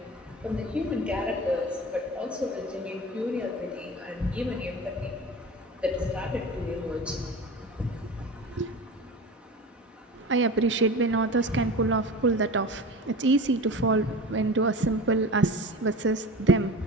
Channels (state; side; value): normal; both; correlation 0.33